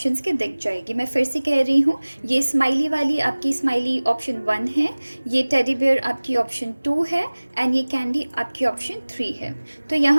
के दिख जाएगी। मैं फिर से कह रही हूँ, ये स्माइली वाली आपकी स्माइली ऑप्शन 1 है, ये टेडी बियर आपकी ऑप्शन 2 है एंड ये कैंडी आपकी ऑप्शन 3 है। तो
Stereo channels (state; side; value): inverted; both; correlation -1.00